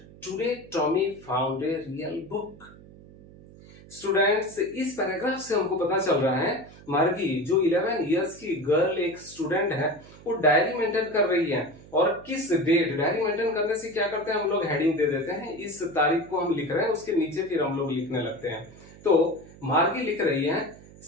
"Today Tommy found a real book." Students, इस पैराग्राफ से हमको पता चल रहा है मार्गी जो 11 इयर्स की गर्ल एक स्टूडेंट है, वो डायरी मेंटेन कर रही है। और किस डेट, डायरी मेंटेन करने से क्या करते हैं हम लोग, हेडिंग दे देते हैं। इस तारीख को हम लिख रहे हैं, उसके नीचे फिर हम लोग लिखने लगते हैं। तो मार्गी लिख रही है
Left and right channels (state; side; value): noise; right; hum, 21 dB below the sound